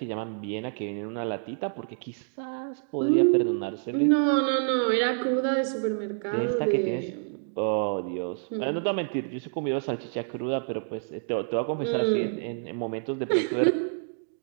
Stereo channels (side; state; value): left; silent; digital silence